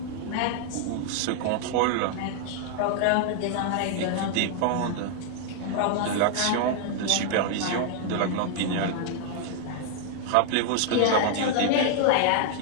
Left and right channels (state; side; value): different; both; correlation 0.00